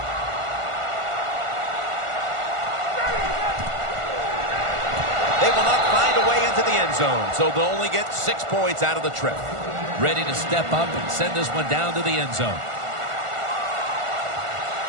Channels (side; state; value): left; late; 1.5 ms